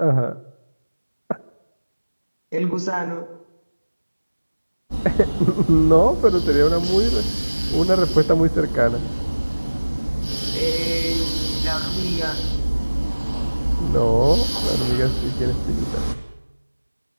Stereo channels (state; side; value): inverted; both; correlation -1.00